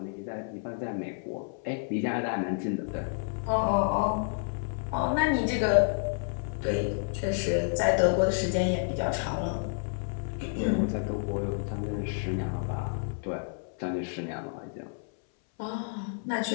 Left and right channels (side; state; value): right; silent; 58 dB below the other